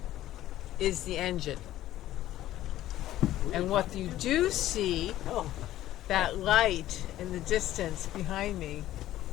is the engine. And what you do see, that light in the distance behind me,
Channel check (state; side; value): quieter; right; 13.9 dB